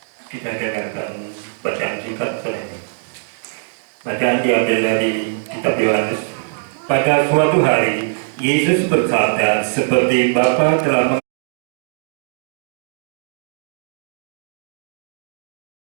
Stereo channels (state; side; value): silent; left; digital silence